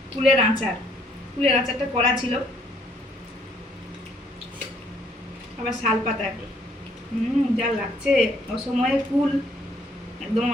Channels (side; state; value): both; normal; correlation 0.66